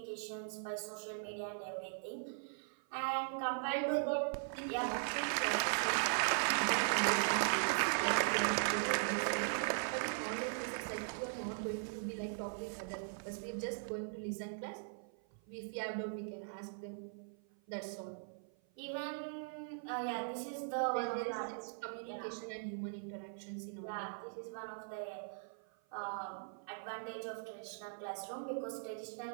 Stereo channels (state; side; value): silent; left; 51 dB below the other